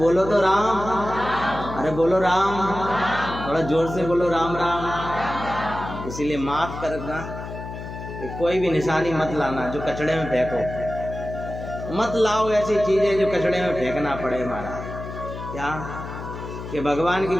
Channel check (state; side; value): noise; left; hum, 9 dB below the sound